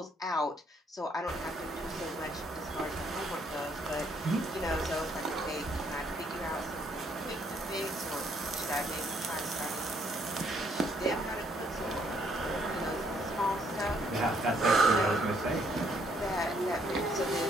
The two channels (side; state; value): both; normal; correlation 0.69